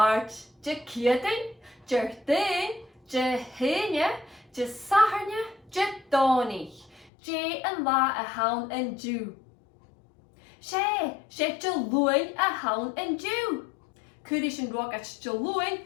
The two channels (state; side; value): drops out; right; at 7.1 s